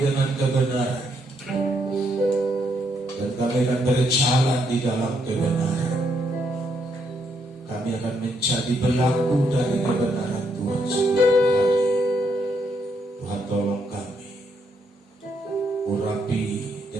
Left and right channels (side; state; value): both; normal; correlation 0.76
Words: dengan kebenaran, dan kami akan berjalan di dalam kebenaran. Kami akan menjadi pelaku dari kebenaran Tuhan setiap hari. Tuhan tolong kami, urapi